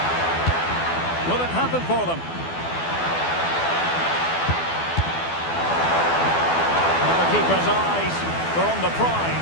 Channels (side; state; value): right; late; 12 ms